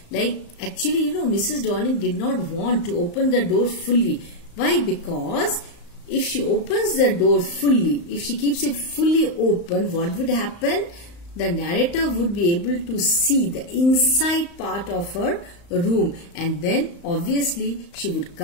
Like, actually, Mrs. Dorling did not want to open the door fully. Why? Because if she opens the door fully, if she keeps it fully open, what would happen? The narrator would be able to see the inside part of her room, and then obviously she would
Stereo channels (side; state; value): right; late; 35 ms